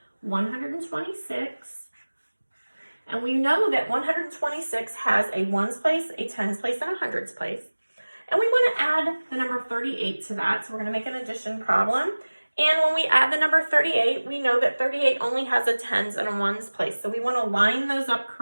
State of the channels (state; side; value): inverted; both; correlation -1.00